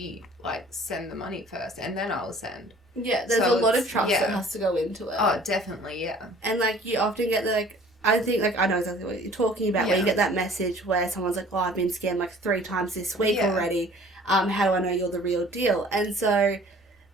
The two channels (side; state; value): both; normal; correlation 0.51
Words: like, send the money first and then I'll send. Yeah, there's a lot of trust that has to go into it. Oh, definitely, yeah. And, like, you often get the, like, I think, like, I know exactly what you're talking about, where you get that message where someone's like, oh, I've been scammed, like, 3 times this week already. How do I know you're the real deal? And so